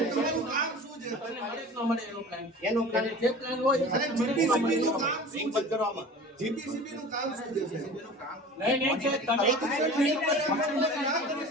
એનો પ્લાન જે પ્લાન હોય જીપીસીબી નું કામ શું છે કરવામાં? જીપીસીબી નું કામ શું છે? જીપીસીબી નું કામ નહીં છે.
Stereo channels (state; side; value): normal; both; correlation 0.39